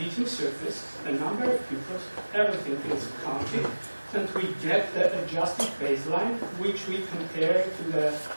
surface, the number of people, everything is counted, and we get the adjusted baseline, which we compare to the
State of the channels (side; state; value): both; inverted; correlation -1.00